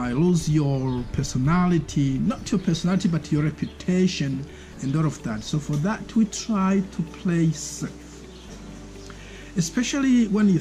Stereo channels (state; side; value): identical; both; correlation 1.00